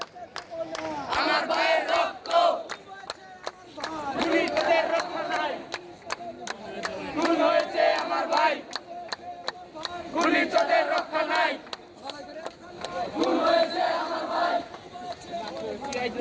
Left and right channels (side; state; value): both; identical; correlation 1.00